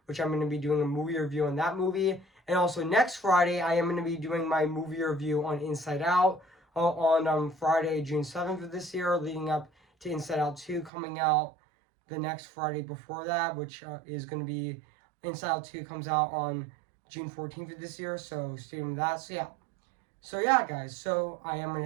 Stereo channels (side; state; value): left; drops out; at 10.9 s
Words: which I'm going to be doing a movie review on that movie. And also next Friday, I am going to be doing my movie review on Inside Out on Friday, June 7th of this year, leading up to Inside Out 2 coming out the next Friday before that, which is going to be Inside Out 2 comes out on June 14th of this year, so stay tuned with that. So yeah, guys, so I am going